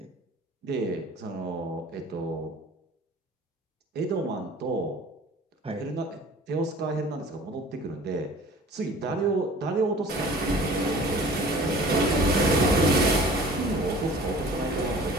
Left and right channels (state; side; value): normal; both; correlation 0.46